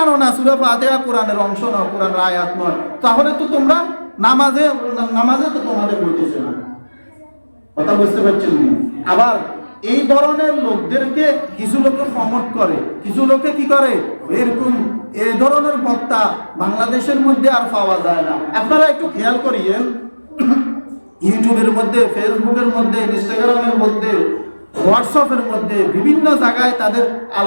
না সূরা ফাতিহা কোরআনের অংশ নয়, কোরআনের আয়াত নয়, তাহলে তো তোমরা নামাজে তো তোমাদের হইতেছে না। কথা বুঝতে পারছেন? আবার এই ধরনের লোকদেরকে কিছু লোক প্রমোট করে, কিছু লোকে কি করে, এরকম এই ধরনের বক্তা বাংলাদেশের মধ্যে আর পাওয়া যায় না। আপনারা একটু খেয়াল করিয়েন, ইউটিউবের মধ্যে, ফেসবুকের মধ্যে, ইনস্টাগ্রামের মধ্যে, হোয়াটসঅ্যাপের মধ্যে বিভিন্ন জায়গায় তাদের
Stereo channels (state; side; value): inverted; both; correlation -1.00